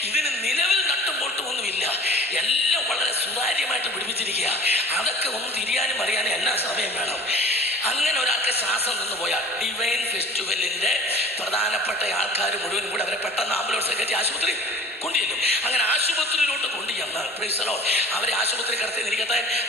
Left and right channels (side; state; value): both; normal; correlation 0.43